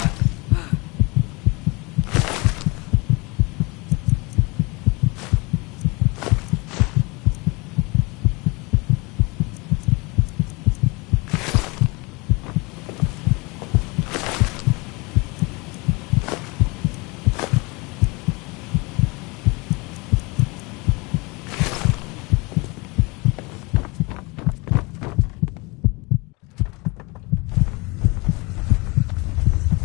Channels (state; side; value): quieter; right; 26.7 dB